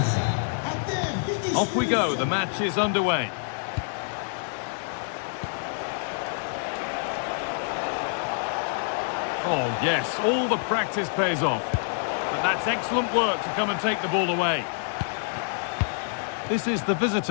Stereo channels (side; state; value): right; silent; digital silence